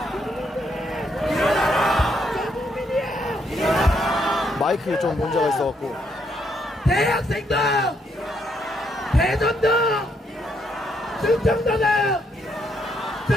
마이크에 좀 문제가 있어갖고. 대학생도 대전도 충청도도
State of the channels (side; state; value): both; normal; correlation 0.74